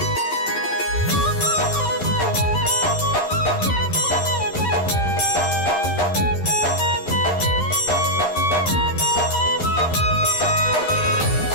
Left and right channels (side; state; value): right; late; 11 ms